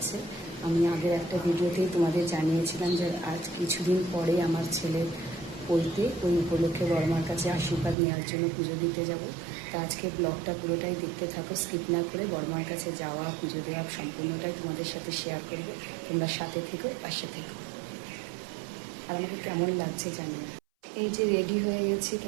আমি আগের একটা ভিডিওতেই তোমাদের জানিয়েছিলাম যে আজ কিছুদিন পরে আমার ছেলের পৈতে, ওই উপলক্ষে বড়মার কাছে আশীর্বাদ নেওয়ার জন্য পুজো দিতে যাব। তা আজকে ব্লগটা পুরোটাই দেখতে থাকো, স্কিপ না করে। বড়মার কাছে যাওয়া, পুজো দেওয়া সম্পূর্ণটাই তোমাদের সাথে শেয়ার করবে। তোমরা সাথে থেকো, পাশে থেকো। আর আমাকে কেমন লাগছে জানি না। এই যে রেডি হয়ে গেছি,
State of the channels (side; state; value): left; drops out; at 8.0 s